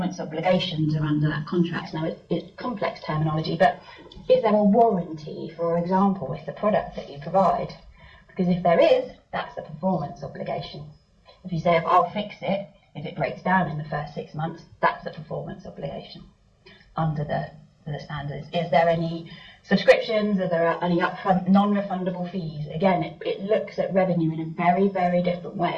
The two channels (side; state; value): both; identical; correlation 1.00